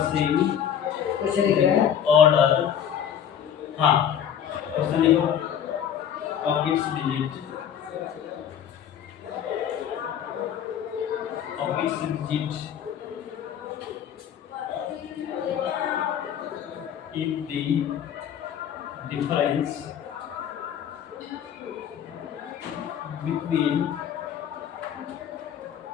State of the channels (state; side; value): quieter; right; 9.1 dB